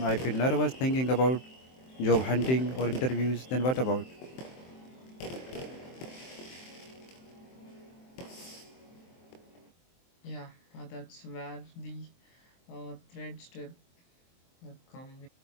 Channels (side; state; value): right; late; 23 ms